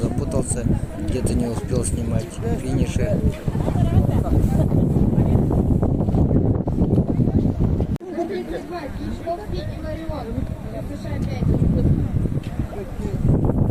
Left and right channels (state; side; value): identical; both; correlation 1.00